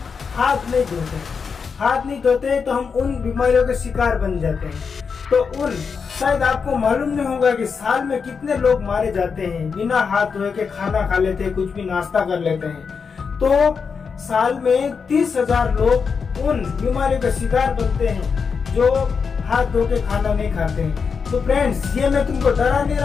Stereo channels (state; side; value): quieter; right; 5.7 dB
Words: हाथ नहीं धोते। हाथ नहीं धोते तो हम उन बीमारियों के शिकार बन जाते हैं। तो शायद आपको मालूम नहीं होगा कि साल में कितने लोग मारे जाते हैं, बिना हाथ धोए के खाना खा लेते हैं, कुछ भी नाश्ता कर लेते हैं। तो साल में 30,000 लोग उन बीमारियों का शिकार बनते हैं जो हाथ धो के खाना नहीं खाते हैं। तो फ्रेंड्स, ये मैं तुमको डरा नहीं